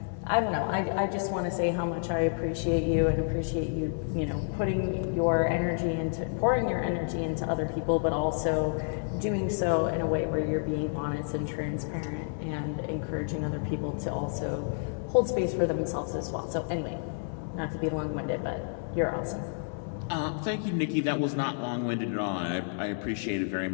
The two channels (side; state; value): right; silent; 58 dB below the other